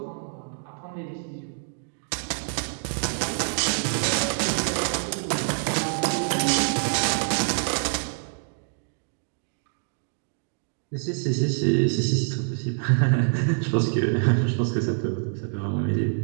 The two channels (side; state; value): left; silent; digital silence